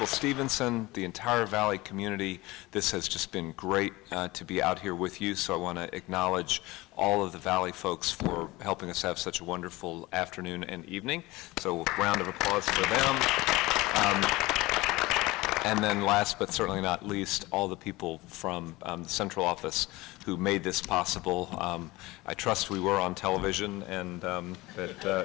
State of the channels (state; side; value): quieter; right; 20.7 dB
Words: Stevenson, the entire Valley community. This has just been great to be out here with you, so I want to acknowledge all of the Valley folks for helping us have such a wonderful afternoon and evening. So a round of applause for them. And then last but certainly not least, all the people from the central office who made this possible. I trust we were on television and